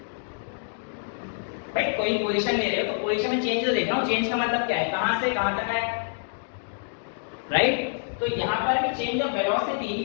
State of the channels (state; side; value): silent; right; digital silence